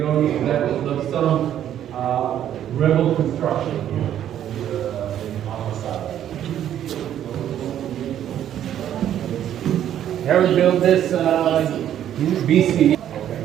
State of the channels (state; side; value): quieter; left; 10.8 dB